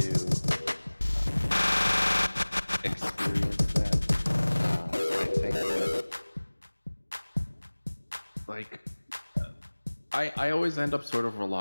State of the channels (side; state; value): both; inverted; correlation -1.00